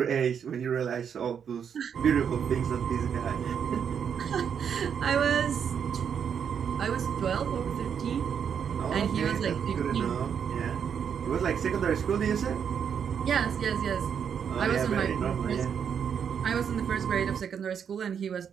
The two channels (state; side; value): quieter; left; 7.6 dB